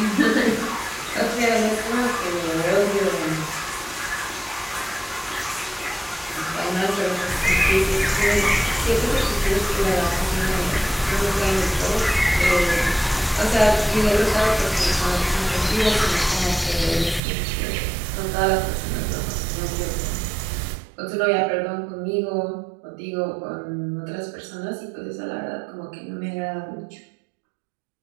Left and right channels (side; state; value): left; drops out; at 17.2 s